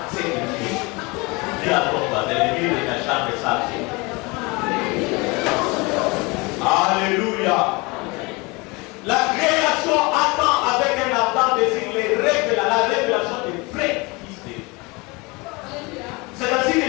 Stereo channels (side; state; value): right; quieter; 26.1 dB